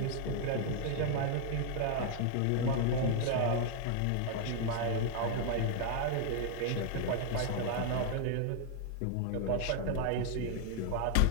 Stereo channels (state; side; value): different; both; correlation 0.00